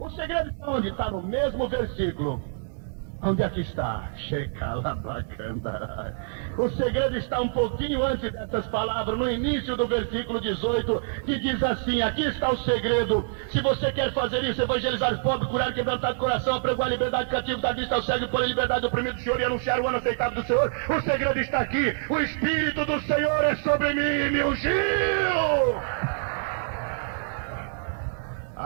segredo está onde? Está no mesmo versículo. Onde é que está? O segredo está um pouquinho antes dessas palavras, no início do versículo 18, que diz assim: aqui está o segredo. Se você quer fazer isso, evangelizar os pobres, curar quebrantado coração, apregoar a liberdade cativo, dar vista ao cego, pôr em liberdade o oprimido do Senhor e anunciar o ano aceitável do Senhor, o segredo está aqui. O Espírito do Senhor é sobre mim e me ungiu.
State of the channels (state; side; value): silent; left; digital silence